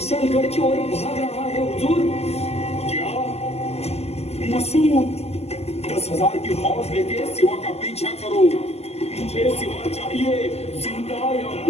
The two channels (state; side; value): late; right; 0.30 ms